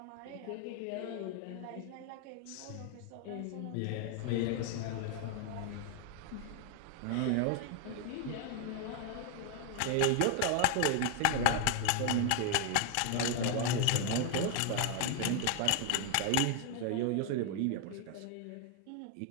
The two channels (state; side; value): different; both; correlation 0.01